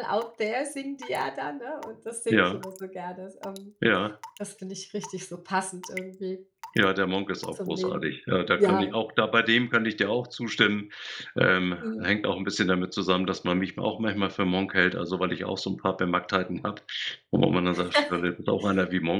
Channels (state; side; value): identical; both; correlation 1.00